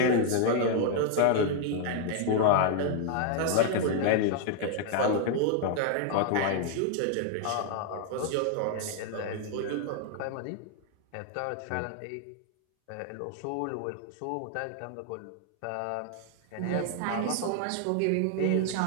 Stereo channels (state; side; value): different; both; correlation 0.00